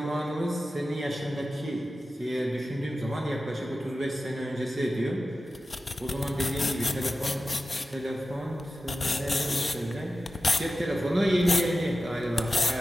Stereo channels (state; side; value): normal; both; correlation 0.93